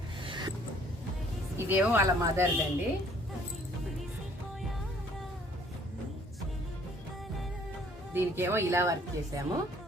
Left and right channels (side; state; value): both; normal; correlation 0.59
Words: ఇదేమో వాళ్ళ మదర్దండి. దీనికేమో ఇలా వర్క్ చేసాము,